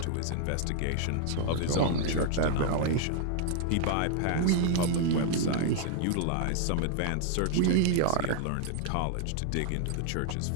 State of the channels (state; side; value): different; both; correlation 0.00